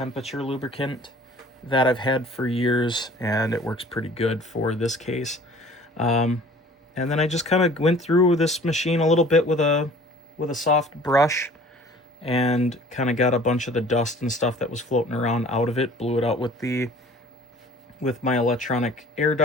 lubricant that I've had for years, and it works pretty good for this case. And then I just kind of went through this machine a little bit with a soft brush and kind of got a bunch of the dust and stuff that was floating around out of it, blew it out with my electronic air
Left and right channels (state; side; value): normal; both; correlation 0.49